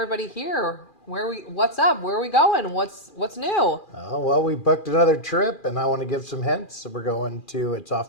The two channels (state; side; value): late; right; 2.4 ms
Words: here. What's up? Where are we going? What's new? Well, we booked another trip, and I want to give some hints. We're going to, it's